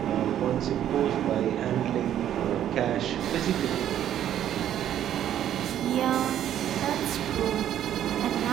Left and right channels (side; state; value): left; quieter; 10.9 dB